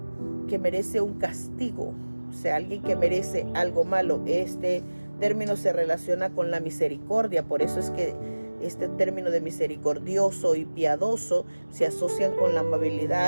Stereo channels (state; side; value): inverted; both; correlation -1.00